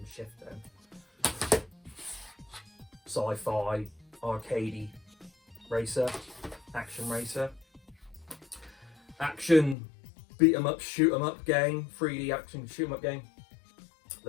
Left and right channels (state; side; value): drops out; right; at 9.8 s